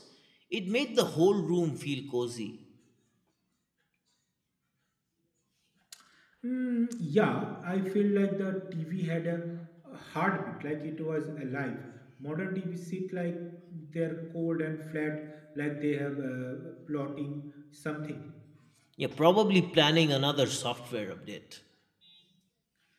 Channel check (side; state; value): both; identical; correlation 1.00